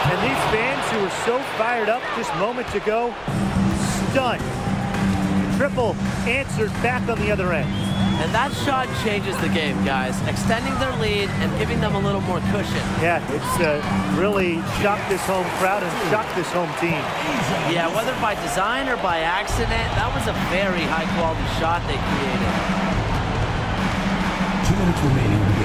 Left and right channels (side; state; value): both; identical; correlation 1.00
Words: And these fans who were so fired up just moments ago, stunned triple answered back on the other end. And that shot changes the game, guys, extending their lead and giving them a little more cushion. Yeah, it's really shocked this home crowd and shocked this home team. Yeah, whether by design or by accident, that was a very high-quality shot they created. 2 minutes remaining in the